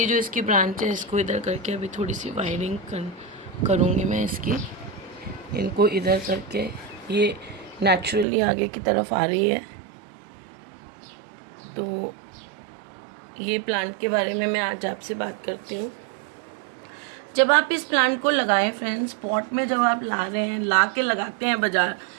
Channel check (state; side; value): drops out; left; at 8.2 s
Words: जो इसकी ब्रांच है, इसको इधर करके अभी थोड़ी सी वायरिंग करूँगी मैं इसकी। इनको इधर करके ये नेचुरली आगे की तरफ आ रही है। तो ये प्लांट के बारे में मैं आज आपसे बात करती हूँ। जब आप इस प्लांट को लगाएं फ्रेंड्स, पॉट में जब आप ला रहे हैं, ला के लगाते हैं बाजार